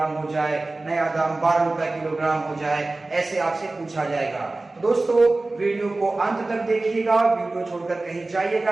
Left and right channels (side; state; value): left; quieter; 3.1 dB